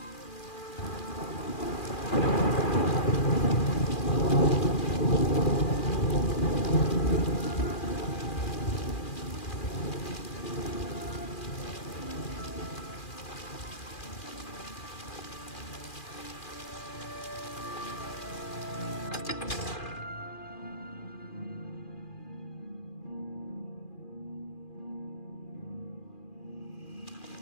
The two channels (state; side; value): late; right; 2.4 ms